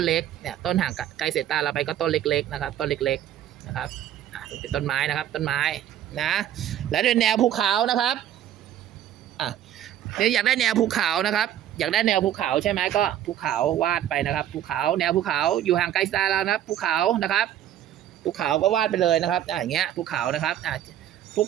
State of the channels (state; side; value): quieter; left; 11.3 dB